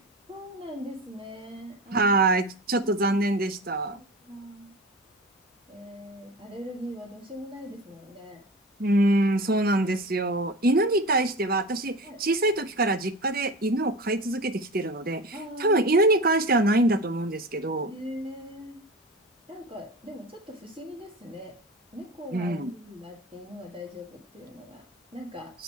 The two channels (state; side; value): normal; both; correlation 0.31